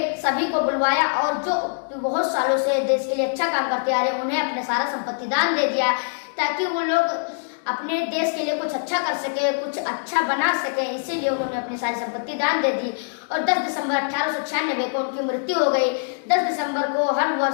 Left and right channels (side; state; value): right; silent; digital silence